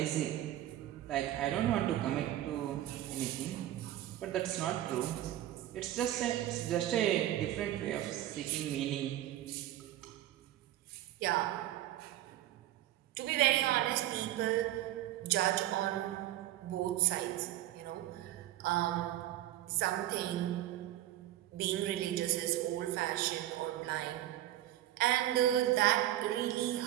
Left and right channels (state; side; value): quieter; left; 13.7 dB